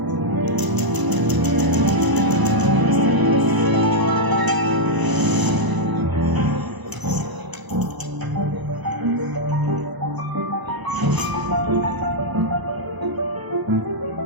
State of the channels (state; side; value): late; left; 1.0 ms